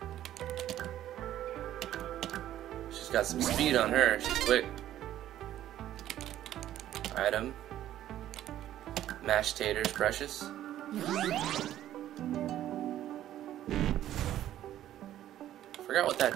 She's got some speed on her. She's quick. Item. Mashed taters, precious. Forgot what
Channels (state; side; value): quieter; left; 12.4 dB